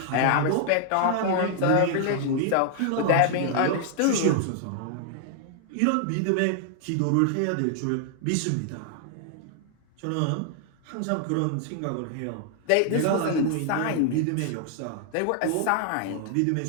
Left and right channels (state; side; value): different; both; correlation 0.00